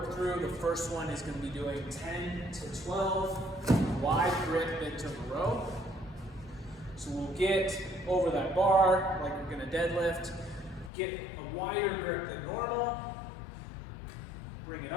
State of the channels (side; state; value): right; drops out; at 10.9 s